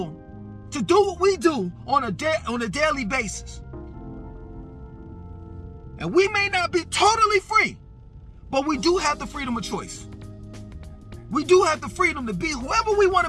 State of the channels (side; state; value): both; identical; correlation 1.00